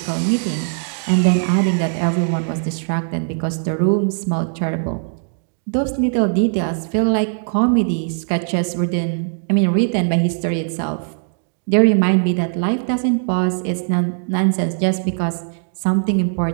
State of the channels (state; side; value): silent; left; 66 dB below the other